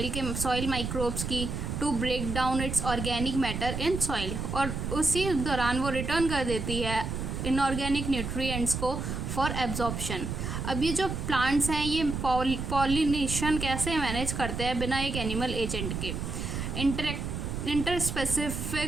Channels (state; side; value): noise; right; rumble, 4 dB below the sound